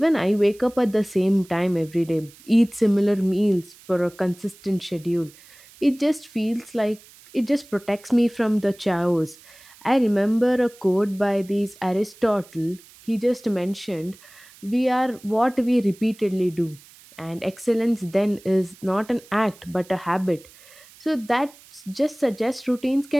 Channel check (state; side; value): noise; right; hiss, 24 dB below the sound